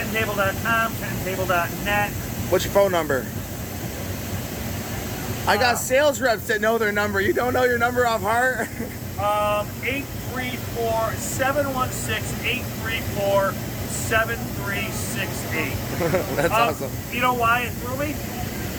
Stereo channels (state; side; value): identical; both; correlation 1.00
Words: tenttable.net. What's your phone number? I got sales reps that know their number. You don't know your number off heart? 834-716-834-7368. That's awesome. You know why it threw me?